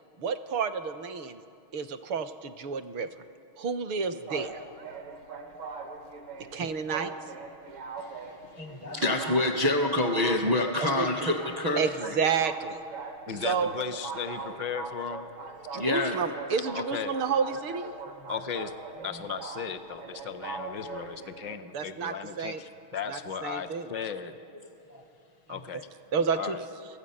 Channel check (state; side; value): late; left; 6.4 ms